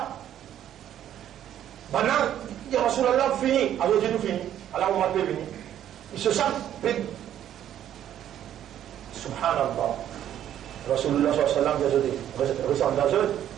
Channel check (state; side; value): quieter; left; 11.0 dB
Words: maintenant, il y a Rasulallah fini, alors Dieu nous fini, alors on m'a pas venu. Ils se sentent pédés. Subhanallah. Rasulullah sallallahu alayhi wa sallam,